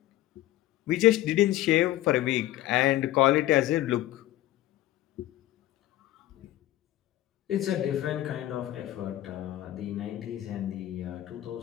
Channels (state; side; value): quieter; right; 14.7 dB